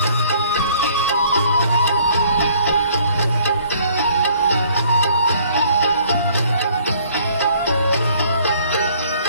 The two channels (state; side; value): inverted; both; correlation -0.59